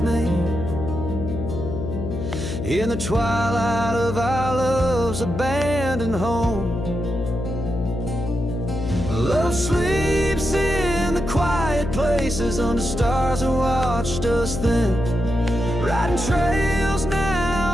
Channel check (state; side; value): noise; left; hum, 5 dB below the sound